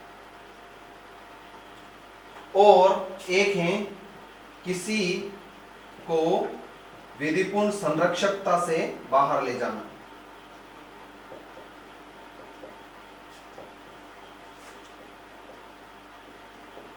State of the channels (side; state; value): both; identical; correlation 1.00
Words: और एक है किसी को विधिपूर्ण संरक्षकता से बाहर ले जाना।